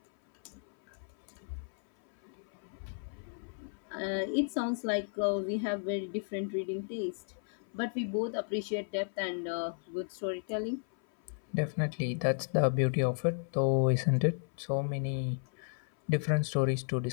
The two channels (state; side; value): silent; right; 55 dB below the other